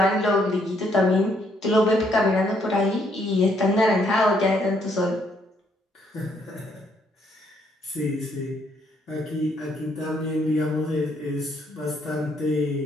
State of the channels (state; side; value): normal; both; correlation 0.71